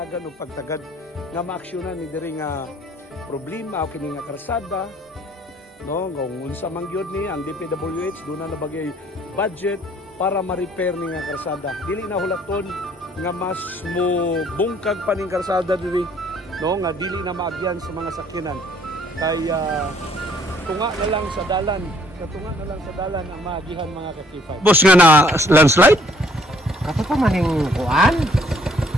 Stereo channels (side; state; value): both; normal; correlation 0.61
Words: og pagtagad nga maaksyonan ni diri nga problema o kini nga karsada. No, kung unsa man gyud ni ang DPWH doon na nabagay budget para ma-repair ni nga karsada. Dili na hulaton nga mas mo bungkag pa ning karsada diri, no, nga dili na maagyan sa mga sakyanan. Kaya tunga na lang sa dalan, katunga na lang sa dalan ang maagihan mga ka-K5. Boss nga na landslide? Kato pa maning kuan?